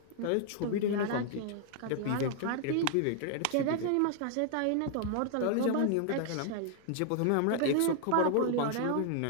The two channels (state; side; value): different; both; correlation 0.00